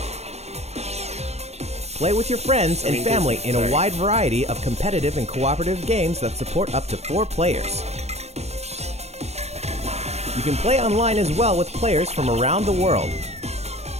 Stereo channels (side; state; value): left; late; 0.31 ms